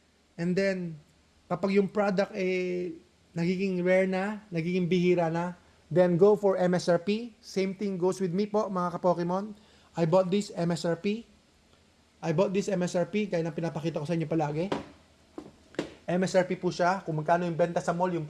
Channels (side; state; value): both; identical; correlation 1.00